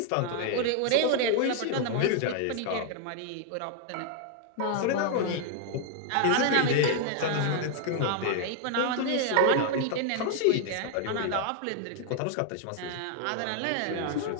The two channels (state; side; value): different; both; correlation 0.00